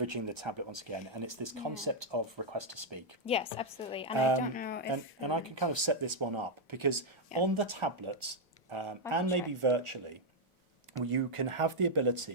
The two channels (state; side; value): normal; both; correlation -0.02